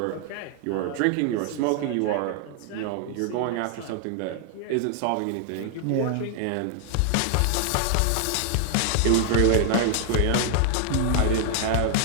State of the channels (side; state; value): both; different; correlation 0.00